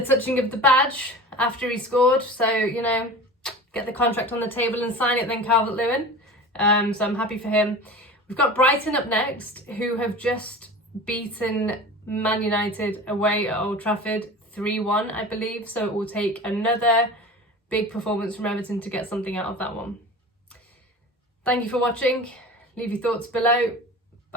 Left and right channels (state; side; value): normal; both; correlation 0.36